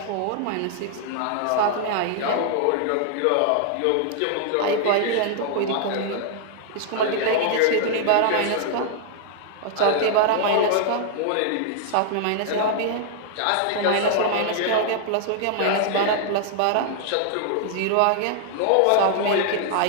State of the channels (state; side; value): different; both; correlation 0.00